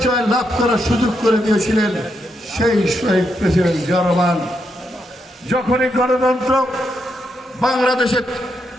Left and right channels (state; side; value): normal; both; correlation 0.81